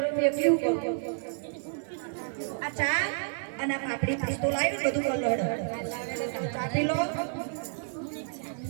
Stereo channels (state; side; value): silent; left; 58 dB below the other